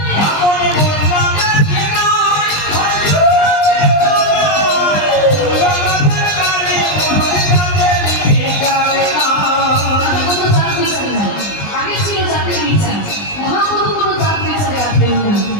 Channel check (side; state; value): right; late; 20 ms